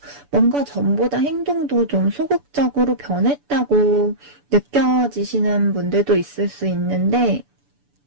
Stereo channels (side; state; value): left; late; 6.9 ms